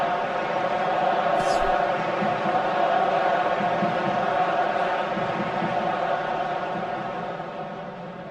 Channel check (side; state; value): both; identical; correlation 1.00